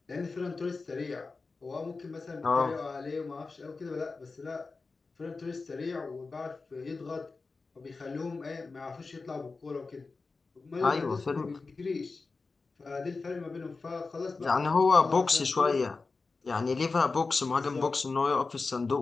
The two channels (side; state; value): right; quieter; 4.0 dB